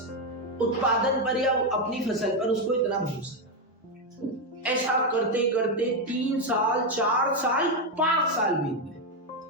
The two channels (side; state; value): both; normal; correlation 0.06